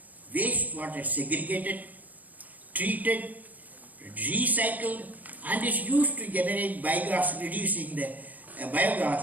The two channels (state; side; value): late; left; 0.080 ms